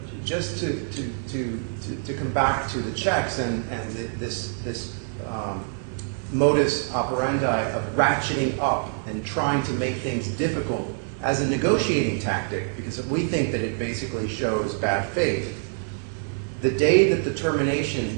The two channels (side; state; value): left; silent; 61 dB below the other